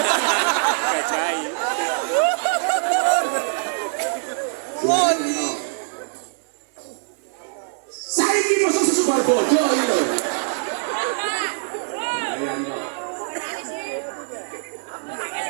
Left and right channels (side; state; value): left; silent; digital silence